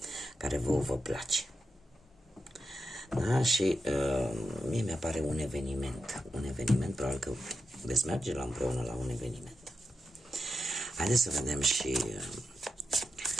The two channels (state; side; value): normal; both; correlation 0.88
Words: care vă place. Da? Și mie mi-apare un eveniment, probabil că veți merge împreună la un eveniment. Haideți să vedem și